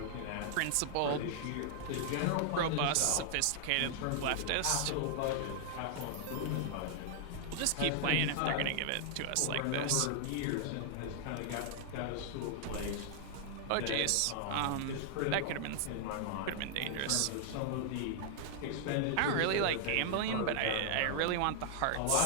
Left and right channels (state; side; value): different; both; correlation -0.01